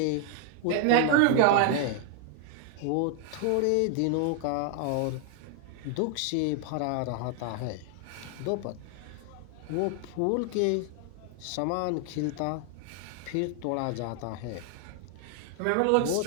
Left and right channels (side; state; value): both; different; correlation 0.00